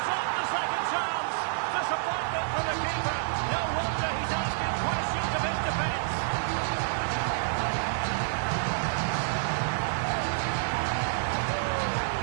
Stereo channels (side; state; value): left; silent; digital silence